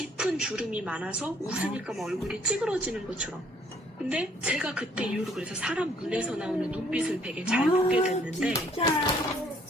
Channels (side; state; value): both; normal; correlation 0.62